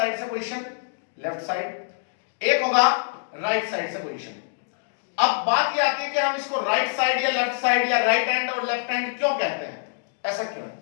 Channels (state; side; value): silent; right; digital silence